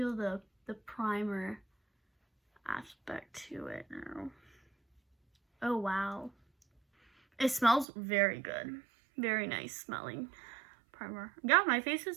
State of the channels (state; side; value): drops out; left; at 7.9 s